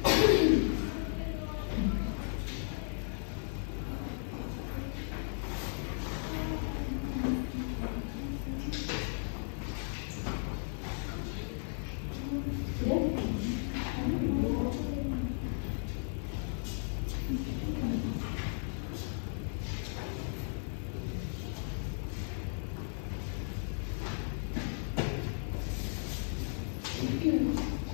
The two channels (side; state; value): right; silent; 54 dB below the other